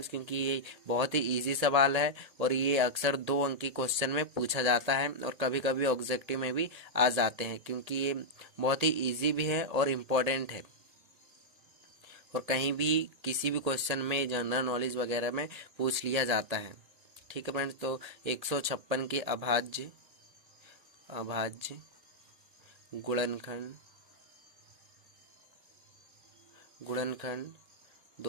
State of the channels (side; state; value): left; late; 1.8 ms